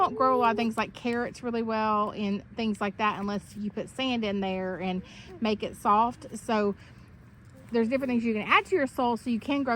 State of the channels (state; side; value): identical; both; correlation 1.00